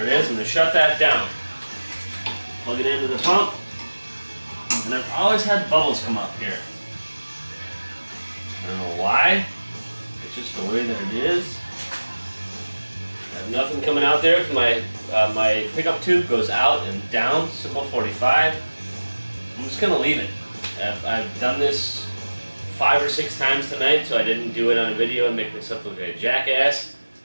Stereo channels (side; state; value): both; inverted; correlation -1.00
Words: it is. I'm gonna shut that down. Plug it into the pump. And I've always had bubbles come up here. I don't know why. It's just the way that it is. I have nothing coming out there because my pickup tube goes out and down, simple 45. I'm just gonna leave it. I've done this 5 or 6 times tonight, so I didn't do it on a video and make myself look like a jackass.